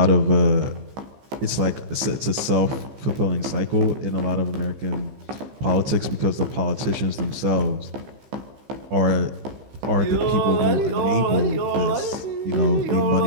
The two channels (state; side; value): late; left; 15 ms